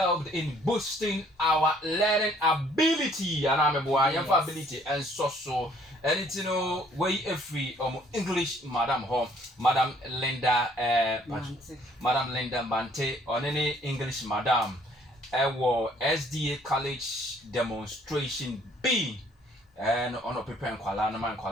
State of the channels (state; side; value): normal; both; correlation 0.61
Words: in boosting our learning ability, and I'm ability and so and it's way free English Madam Linda Madam Linda Mante on any English Madam SDA college demonstration B. And on a paper and